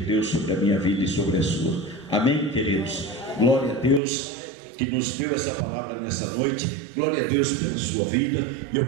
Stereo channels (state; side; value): drops out; left; at 4.0 s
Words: sobre a minha vida e sobre a sua. Amém, queridos? Glória a Deus que nos deu essa palavra nessa noite. Glória a Deus pela sua vida. E